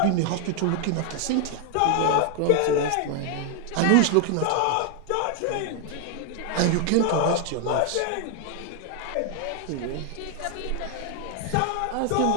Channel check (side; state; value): both; different; correlation 0.00